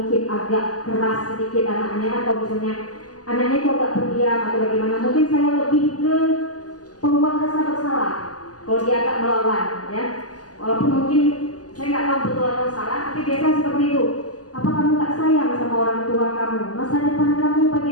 agak keras sedikit anaknya, atau misalnya anaknya itu agak pendiam atau bagaimana, mungkin saya lebih ke pembuat rasa bersalah. Kalau dia agak melawan, ya, walaupun mungkin saya nggak tahu betul atau salah, tapi biasa seperti itu. Apa kamu nggak sayang sama orang tua kamu? Masa depan kamu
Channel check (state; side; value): late; right; 0.67 ms